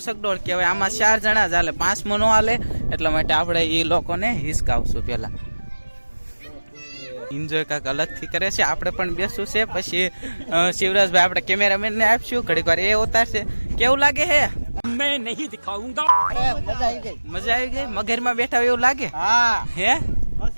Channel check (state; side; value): inverted; both; correlation -1.00